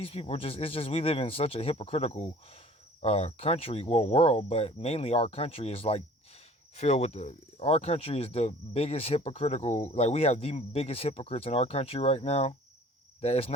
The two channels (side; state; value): both; normal; correlation 0.49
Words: people it's just, we live in such a hypocritical country, well, world, but mainly our country is like filled with our country is the biggest hypocritical, like we have the biggest hypocrites in our country right now, that it's